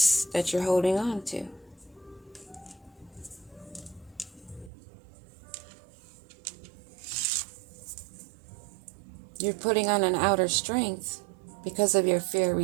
that you're holding on to. You're putting on an outer strength because of your fear of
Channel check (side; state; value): left; drops out; at 4.7 s